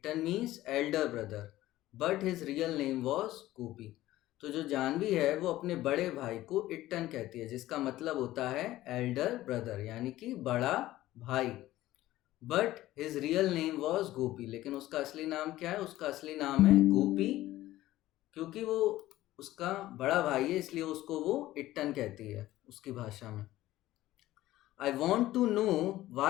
means elder brother, but his real name was Gopi. तो जो जानवी है वो अपने बड़े भाई को इट्टन कहती है, जिसका मतलब होता है एल्डर ब्रदर यानी कि बड़ा भाई। But his real name was Gopi, लेकिन उसका असली नाम क्या है? उसका असली नाम है गोपी। क्योंकि वो उसका बड़ा भाई है इसलिए उसको वो इट्टन कहती है उसकी भाषा में। I want to know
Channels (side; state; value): right; quieter; 15.6 dB